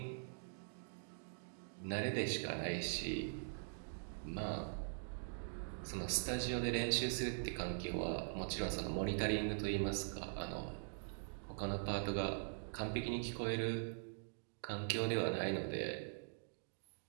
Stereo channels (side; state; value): left; silent; digital silence